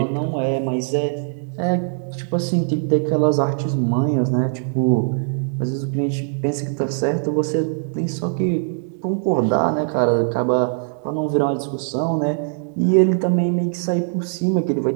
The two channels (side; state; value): left; silent; digital silence